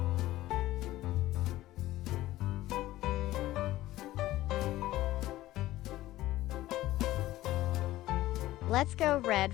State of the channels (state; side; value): quieter; right; 15.9 dB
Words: Let's go red